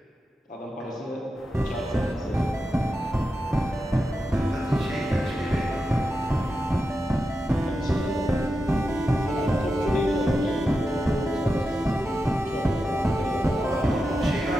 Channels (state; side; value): normal; both; correlation 0.89